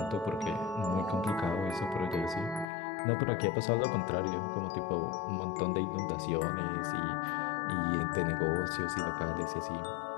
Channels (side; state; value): right; drops out; at 2.7 s